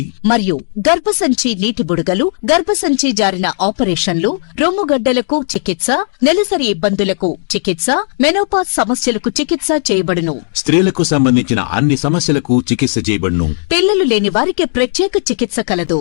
మరియు గర్భసంచి నీటి బుడగలు, గర్భసంచి జారిన ఆపరేషన్లు, రొమ్ముగడ్డలకు చికిత్స, నెలసరి ఇబ్బందులకు చికిత్స, మెనోపాజ్ సమస్యలకు చికిత్స చేయబడును. స్త్రీలకు సంబంధించిన అన్ని సమస్యలకు చికిత్స చేయబడును. పిల్లలు లేని వారికి ప్రత్యేక చికిత్స కలదు.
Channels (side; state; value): right; silent; digital silence